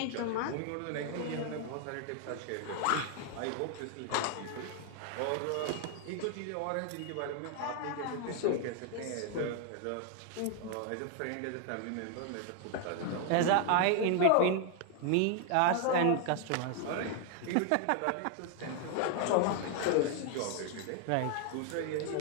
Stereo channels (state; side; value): different; both; correlation 0.00